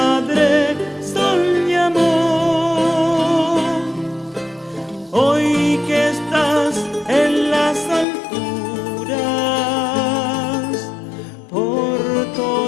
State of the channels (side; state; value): right; drops out; at 8.1 s